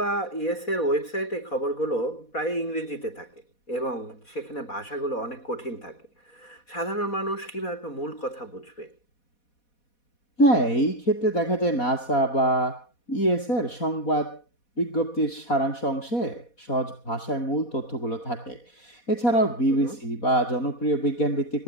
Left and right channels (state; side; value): late; right; 4.2 ms